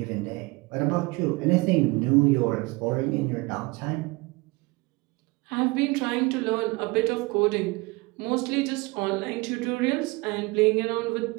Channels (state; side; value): quieter; left; 24.9 dB